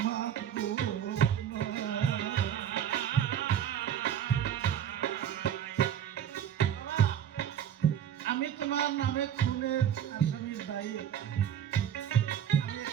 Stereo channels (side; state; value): left; quieter; 9.6 dB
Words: মাপবো না। আমি তোমার নামে খুনের আসামির দায়ী আমি